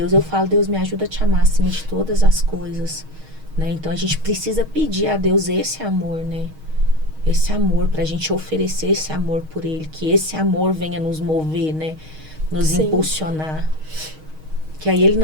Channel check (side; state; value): left; late; 6.4 ms